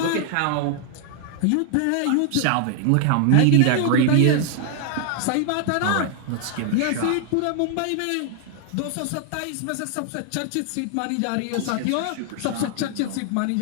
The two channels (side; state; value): both; different; correlation 0.00